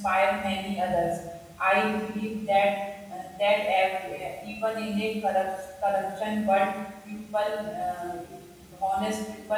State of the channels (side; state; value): both; identical; correlation 1.00